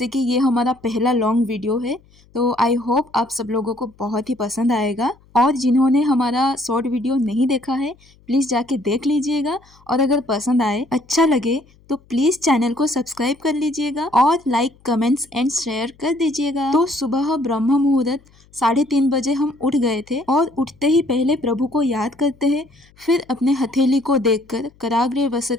कि ये हमारा पहला लॉन्ग वीडियो है, तो आई होप आप सब लोगों को बहुत ही पसंद आएगा। और जिन्होंने हमारा शॉर्ट वीडियो नहीं देखा है, प्लीज जाके देख लीजिएगा। और अगर पसंद आए, अच्छा लगे, तो प्लीज चैनल को सब्सक्राइब कर लीजिएगा और लाइक, कमेंट्स एंड शेयर कर दीजिएगा। तो सुबह ब्रह्म मुहूर्त 3:30 बजे हम उठ गए थे और उठते ही पहले प्रभु को याद करते हैं, फिर अपने हथेली को देखकर कराग्रे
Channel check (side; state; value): left; noise; hum, 30 dB below the sound